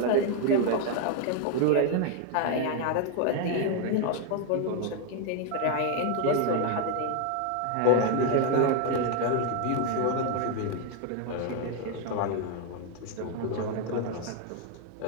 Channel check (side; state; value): both; different; correlation 0.01